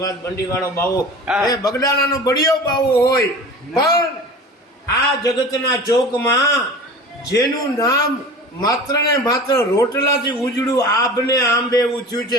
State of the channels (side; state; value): both; normal; correlation 0.37